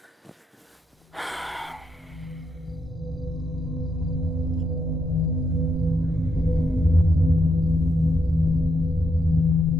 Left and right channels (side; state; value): both; normal; correlation 0.80